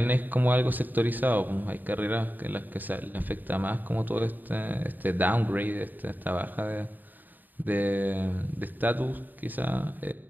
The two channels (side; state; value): left; late; 0.088 ms